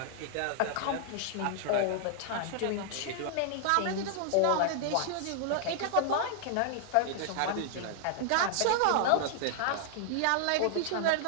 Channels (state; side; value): different; both; correlation -0.01